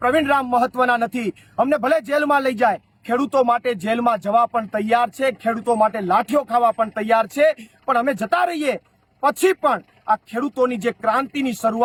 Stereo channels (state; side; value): identical; both; correlation 1.00